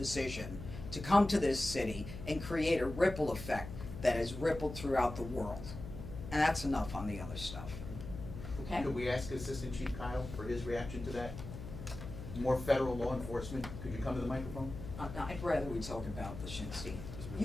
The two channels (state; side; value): noise; left; hum, 10 dB below the sound